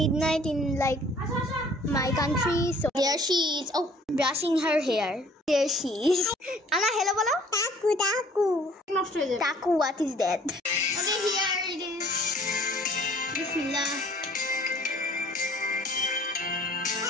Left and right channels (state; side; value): normal; both; correlation 0.55